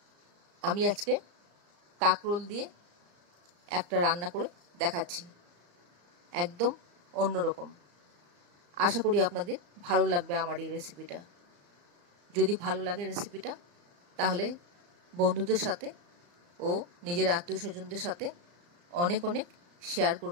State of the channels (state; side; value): late; left; 34 ms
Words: আমি আজকে কাঁকরোল দিয়ে একটা রান্না করে দেখাচ্ছি, একদম অন্যরকম। আশা করি আপনাদের ভালো লাগবে আমার এই রেসিপিটা। যদি ভালো লাগে রেসিপিটা, তাহলে বন্ধুদের সাথে ও নিজের আত্মীয় স্বজনদের সাথে অনেক অনেক শেয়ার